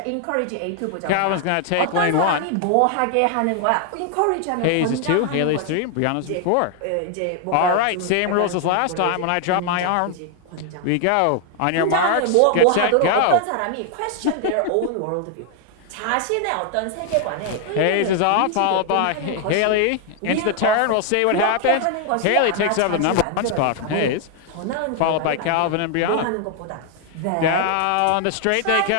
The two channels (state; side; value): different; both; correlation 0.00